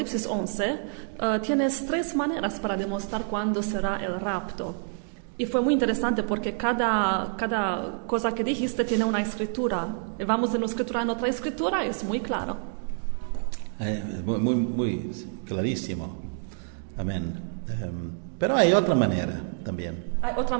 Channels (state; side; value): silent; left; 60 dB below the other